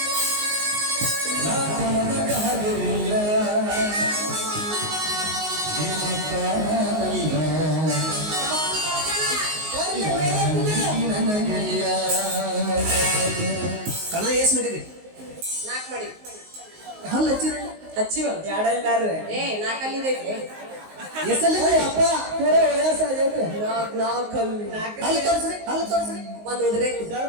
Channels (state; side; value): late; left; 19 ms